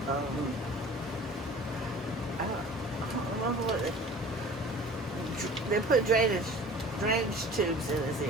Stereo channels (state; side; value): normal; both; correlation 0.44